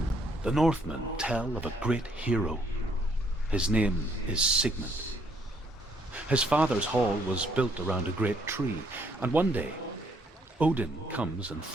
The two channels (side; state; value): both; normal; correlation 0.69